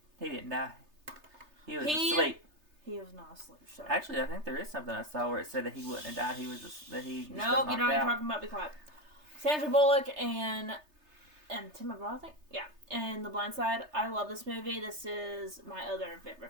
He didn't die. He was asleep. He was not asleep. Sorry. Actually, I think there is something I saw where it said that he wouldn't have died. Nope, you know what you're talking about. Be quiet. Sandra Bullock and Tim McGraw, I think. Yeah. And The Blind Side. I love this movie. This is my other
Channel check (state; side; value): late; left; 3.3 ms